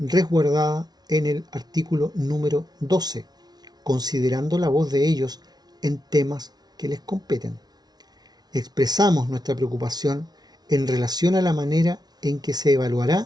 en el artículo número 12, considerando la voz de ellos en temas que les competen. Expresamos nuestra preocupación en relación a la manera en que se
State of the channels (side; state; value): left; late; 0.19 ms